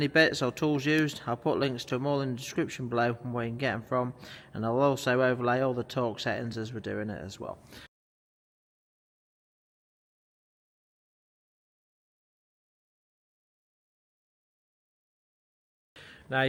bits or tools used, I'll put links to them all in the description below and where you can get them from, and I'll also overlay all the torque settings as we're doing it as well. Now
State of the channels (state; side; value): identical; both; correlation 1.00